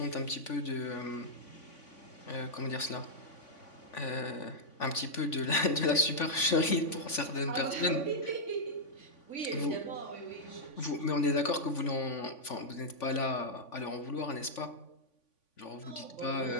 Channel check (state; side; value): late; right; 3.5 ms